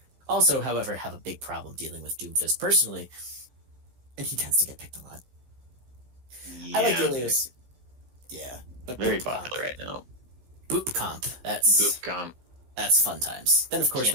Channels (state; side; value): late; left; 16 ms